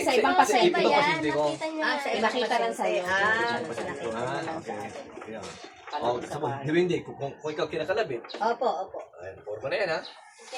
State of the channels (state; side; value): identical; both; correlation 1.00